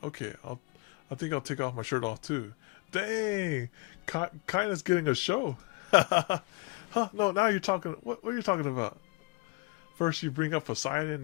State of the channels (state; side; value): quieter; right; 27.2 dB